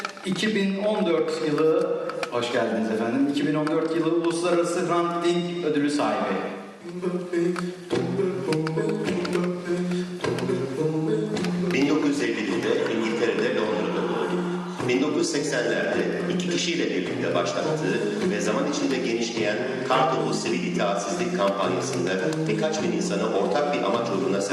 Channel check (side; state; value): both; identical; correlation 1.00